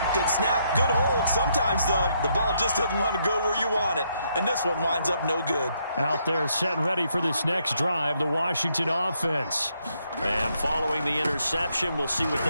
Good snap, good hold. Sometimes, though, the ball just doesn't want to go where you want it. And this one winds up no good. Out there set and ready for this next drive, the Washington offense. And following the interception, we'll see what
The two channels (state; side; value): inverted; both; correlation -0.75